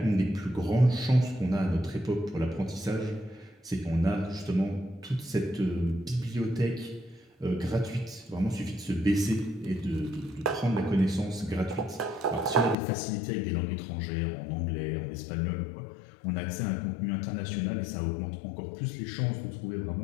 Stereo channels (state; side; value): drops out; right; at 12.8 s